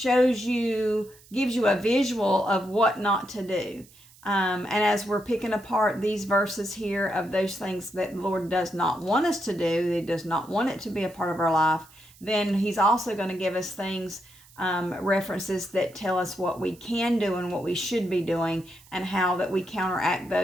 you a visual of what not to do. And as we're picking apart these verses here of those things that the Lord does not want us to do, He does not want it to be a part of our life, then He's also going to give us things, references that tell us what we can do and what we should be doing, and how that we counteract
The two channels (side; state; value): right; noise; hiss, 25 dB below the sound